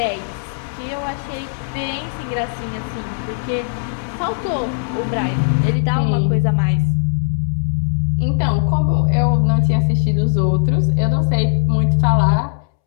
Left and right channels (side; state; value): right; silent; 67 dB below the other